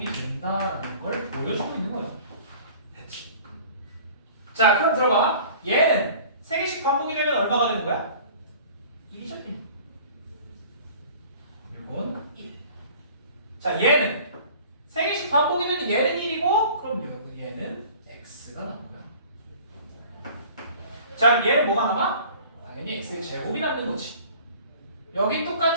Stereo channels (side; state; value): both; inverted; correlation -0.47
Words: 된다라는 걸 보여주고 있는 거예요. 됐지? 자, 그럼 들어봐. 얘는 3개씩 반복이 되면 얼마가 되는 거야? 1이죠, 1. 이건 1. 자, 얘는 3개씩 반복이 되면 얘는 1이고 그럼 얘는 x가 남는 거야. 자, 얘는 뭐가 남아? 당연히 x의 제곱이 남는 거지. 여기